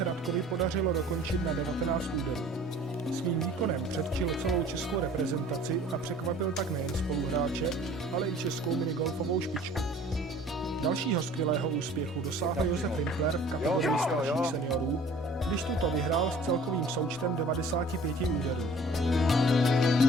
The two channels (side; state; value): both; normal; correlation 0.50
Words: Radkovi podařilo dokončit na 19 úderů. Svým výkonem předčil celou českou reprezentaci a překvapil tak nejen spoluhráče, ale i českou minigolfovou špičku. Dalšího skvělého úspěchu dosáhl Josef Rimpler v kategorii starších seniorů, když tuto vyhrál s celkovým součtem 95 úderů.